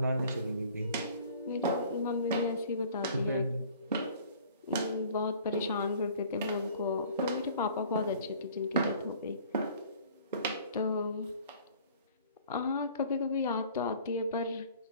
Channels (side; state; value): both; inverted; correlation -0.51